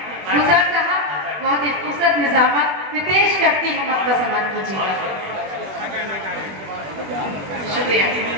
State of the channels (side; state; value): left; late; 21 ms